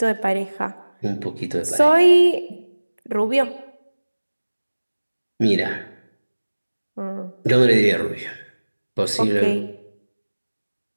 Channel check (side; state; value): both; inverted; correlation -1.00